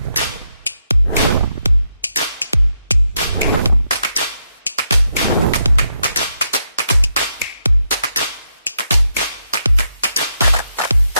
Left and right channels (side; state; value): both; inverted; correlation -0.81